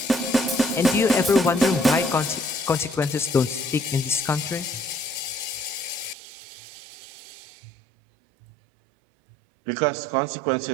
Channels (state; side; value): drops out; left; at 6.2 s